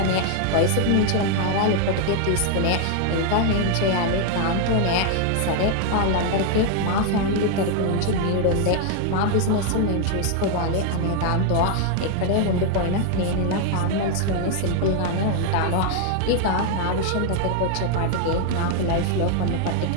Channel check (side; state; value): both; different; correlation 0.00